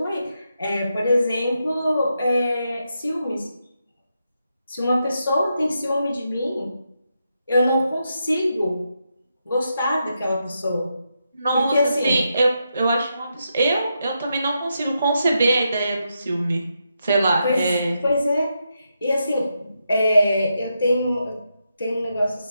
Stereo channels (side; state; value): both; inverted; correlation -0.83